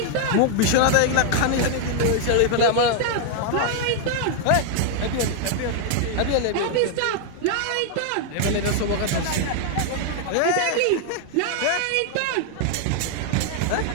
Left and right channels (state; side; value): different; both; correlation 0.00